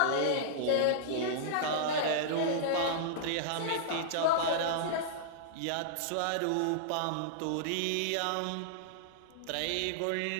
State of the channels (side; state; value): both; different; correlation -0.02